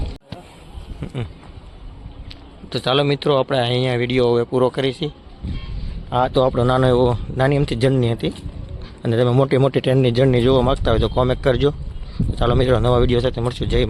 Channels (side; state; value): both; identical; correlation 1.00